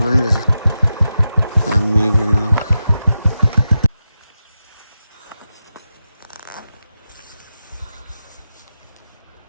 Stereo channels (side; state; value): both; inverted; correlation -0.90